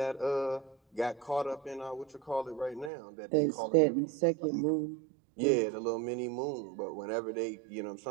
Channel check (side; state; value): left; drops out; at 2.9 s